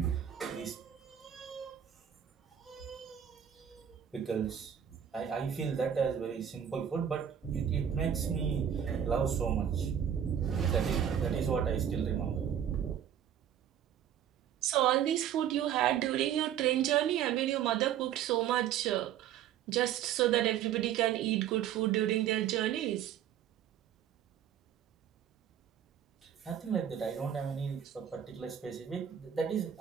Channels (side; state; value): left; quieter; 9.4 dB